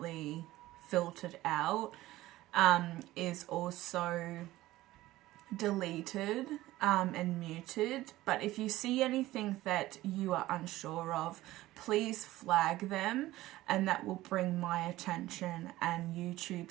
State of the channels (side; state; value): left; quieter; 16.6 dB